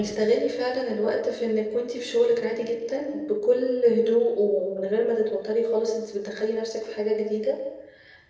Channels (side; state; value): both; identical; correlation 1.00